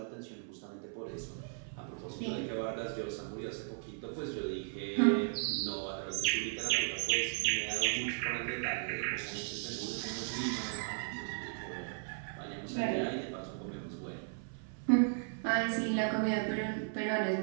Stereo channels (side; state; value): left; silent; 54 dB below the other